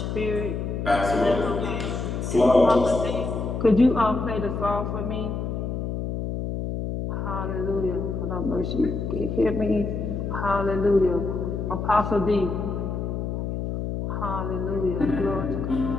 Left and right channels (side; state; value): left; noise; hum, 3 dB below the sound